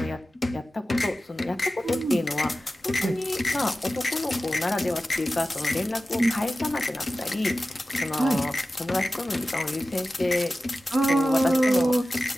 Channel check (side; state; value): both; normal; correlation 0.94